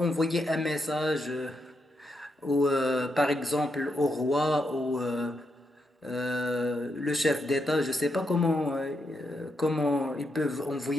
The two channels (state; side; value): normal; both; correlation 0.82